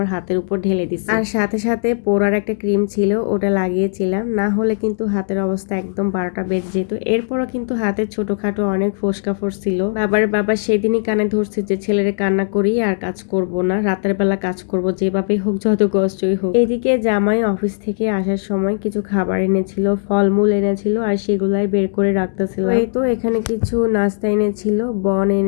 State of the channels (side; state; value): right; silent; digital silence